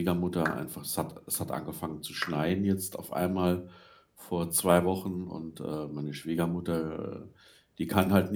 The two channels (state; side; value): identical; both; correlation 1.00